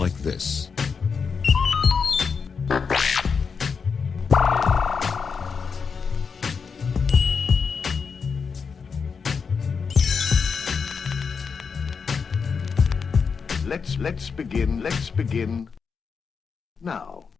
this. Let's begin now.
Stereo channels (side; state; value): right; quieter; 5.7 dB